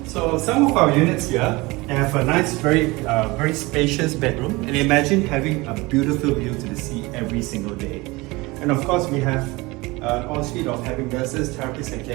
So some of our units here have a nice, very spacious bedroom, and imagine having a beautiful view to the sea every single day. And of course we have an ensuite of having nurses, therapists and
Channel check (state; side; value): quieter; left; 22.9 dB